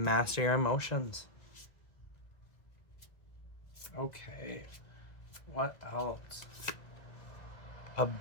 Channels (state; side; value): late; right; 1.9 ms